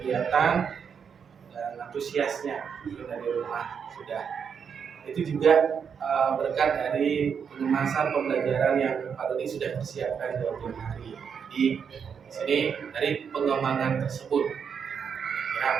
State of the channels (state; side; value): quieter; left; 6.9 dB